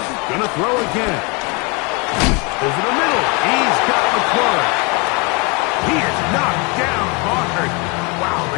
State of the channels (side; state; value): right; quieter; 30.3 dB